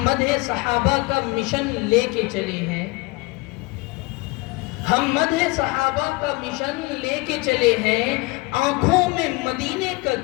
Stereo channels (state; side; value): quieter; right; 24.4 dB